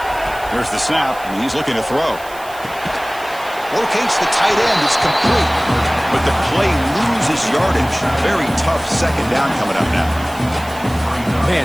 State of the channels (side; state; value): right; noise; hiss, 19 dB below the sound